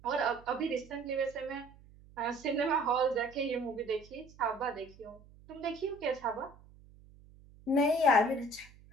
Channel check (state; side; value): noise; right; hum, 23 dB below the sound